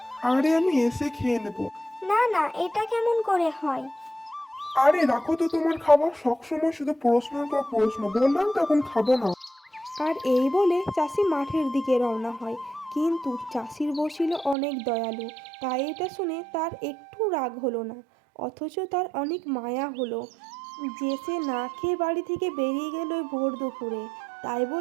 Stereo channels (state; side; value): drops out; left; at 14.6 s